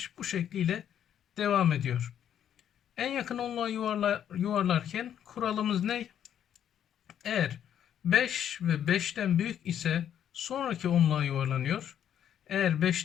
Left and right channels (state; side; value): quieter; right; 9.7 dB